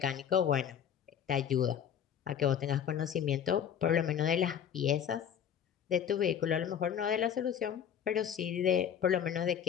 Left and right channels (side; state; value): right; quieter; 8.8 dB